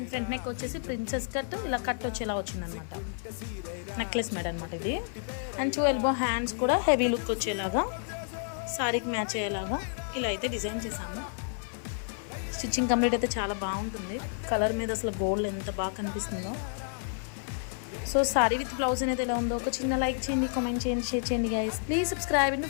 ఫ్రంట్ నెక్ వచ్చేసి ప్రిన్సెస్ కట్ ఇలా కట్ వచ్చేలా వచ్చిందనమాట. నెక్లెస్ మేడ్ అనమాట ఇది. అండ్ 2 ఎల్బో హ్యాండ్స్ కూడా హెవీ లుక్ వచ్చేలాగా సారీకి మ్యాచ్ అయ్యేలాగా ఇలా అయితే డిజైన్ చేసాము. స్టిచ్చింగ్ కంప్లీట్ అయితే చాలా బాగుంటుంది. కలర్ మీద అసలు గోల్డ్ ఎంత బాగా కనిపిస్తుందో. సో సారీ విత్ బ్లౌజ్ అనేది ఎలా ఉందో ఒక చిన్న లైక్ చేయండి, కామెంట్ చేయండి, షేర్ చేయండి guys. Please subscribe and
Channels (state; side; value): silent; right; digital silence